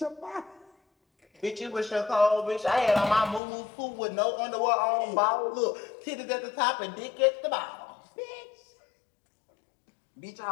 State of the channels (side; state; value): right; drops out; at 3.4 s